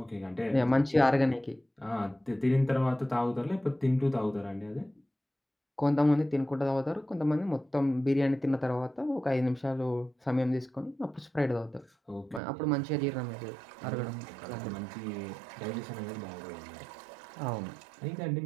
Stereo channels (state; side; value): drops out; left; at 12.4 s